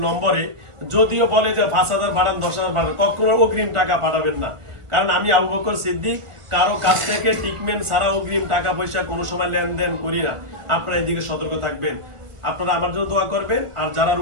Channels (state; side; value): late; left; 1.4 ms